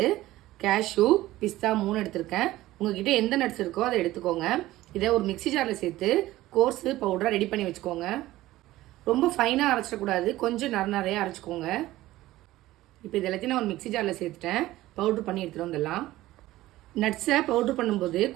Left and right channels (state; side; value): quieter; left; 16.4 dB